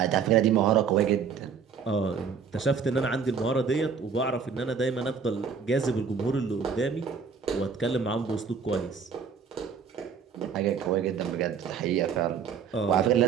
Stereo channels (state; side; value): quieter; left; 6.2 dB